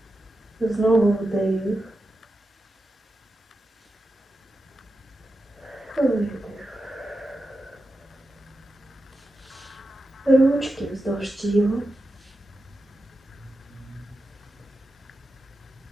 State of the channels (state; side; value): normal; both; correlation 0.90